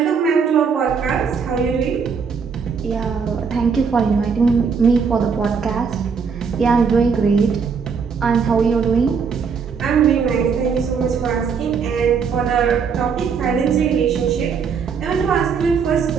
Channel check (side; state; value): left; quieter; 6.0 dB